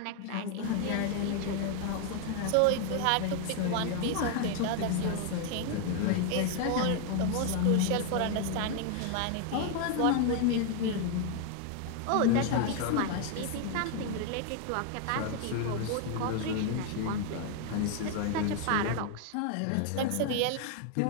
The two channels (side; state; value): both; different; correlation 0.00